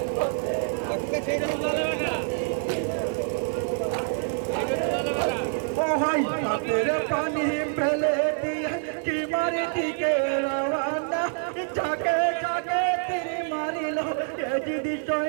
ওহাই হাতের পানি ফেলে দিয়ে কি মারি দিকে রওয়ানা যাকে যাকে তীর মারিল এ যদি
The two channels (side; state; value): left; silent; 61 dB below the other